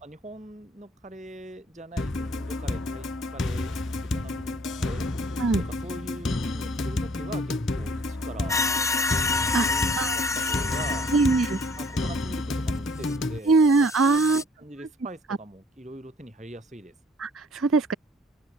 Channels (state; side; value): normal; both; correlation 0.56